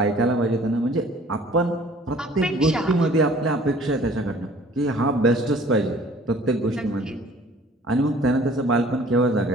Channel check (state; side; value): normal; both; correlation 0.52